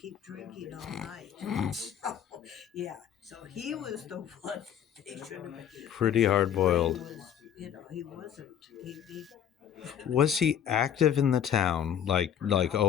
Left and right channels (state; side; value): quieter; right; 9.3 dB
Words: drinking all night. So he was the one they should have been. Pretty hard-boiled. He wasn't. He Was he active in the town? Like,